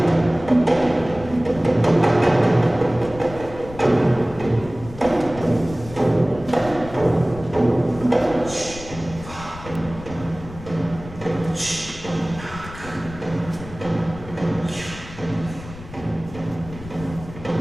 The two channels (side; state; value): left; noise; rumble, 15 dB below the sound